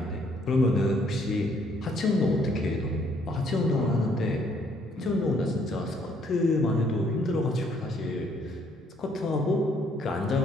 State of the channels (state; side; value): normal; both; correlation 0.66